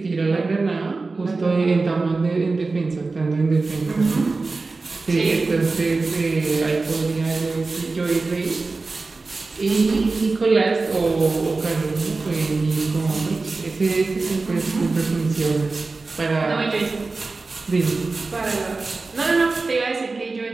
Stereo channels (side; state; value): left; quieter; 3.8 dB